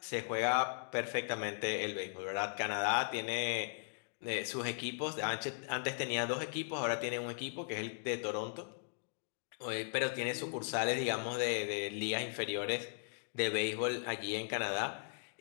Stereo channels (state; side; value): silent; right; digital silence